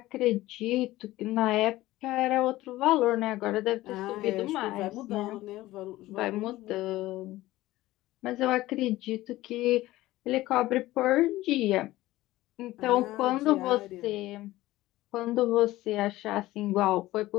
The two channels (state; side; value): quieter; right; 17.0 dB